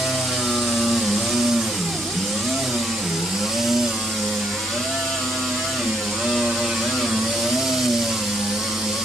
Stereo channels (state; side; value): normal; both; correlation 0.72